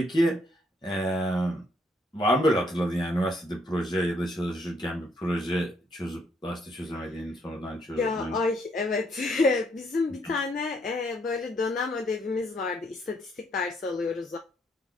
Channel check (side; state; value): both; normal; correlation 0.71